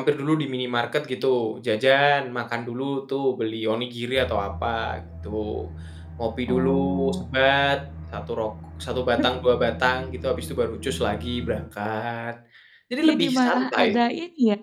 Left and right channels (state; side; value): identical; both; correlation 1.00